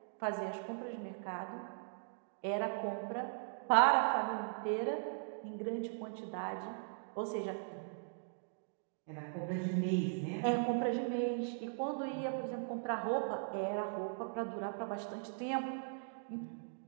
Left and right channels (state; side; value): silent; left; digital silence